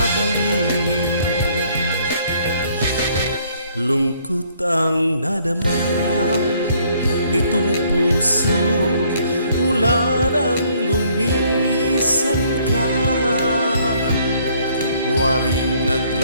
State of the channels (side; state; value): both; inverted; correlation -0.64